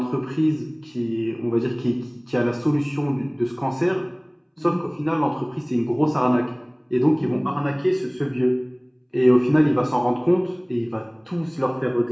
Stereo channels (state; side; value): identical; both; correlation 1.00